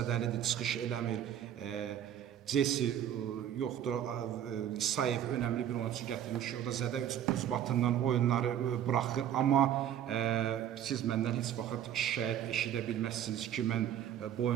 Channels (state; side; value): quieter; left; 10.4 dB